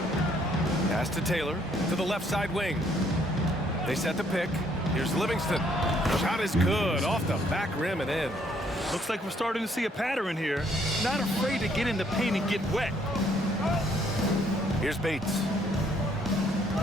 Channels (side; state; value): both; normal; correlation 0.67